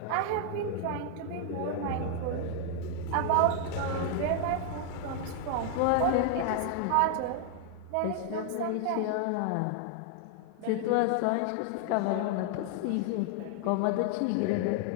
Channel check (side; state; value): both; different; correlation 0.00